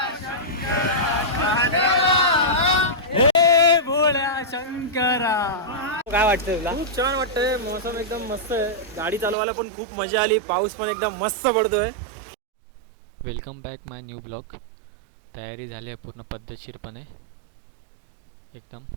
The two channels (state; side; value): drops out; left; at 9.3 s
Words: शंकरा. काय वाटतं तुला? खूप छान वाटतंय. मौसम एकदम मस्त आहे. गाडी चालवायला पण खूप मजा आली. पाऊस पण एकदम मस्त पडतोय. वेलकम बॅक माय न्यू ब्लॉग. तयारी झाली आहे पूर्ण पद्धतशीरपणे एकदम.